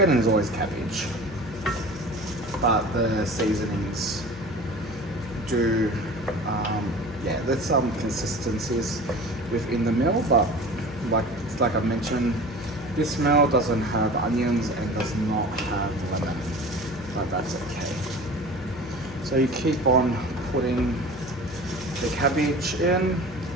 and there's always cabbage, but the seasonings do, yeah, there's some consistencies within the meal, but like I mentioned, this meal doesn't have onions and does not have lemon, but that's okay. So you keep on putting the cabbage in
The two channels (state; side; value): noise; left; hum, 15 dB below the sound